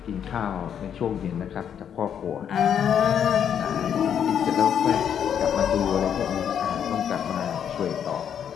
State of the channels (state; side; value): quieter; right; 8.6 dB